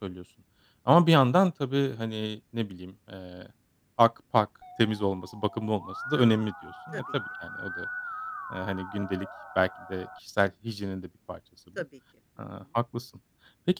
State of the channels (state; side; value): identical; both; correlation 1.00